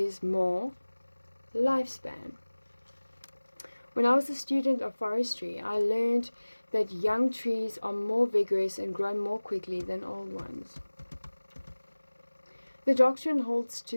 more lifespan. When I was a student of forestry, I learned that young trees are more vigorous and grow more quickly than old ones. The doctrine holds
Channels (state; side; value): inverted; both; correlation -1.00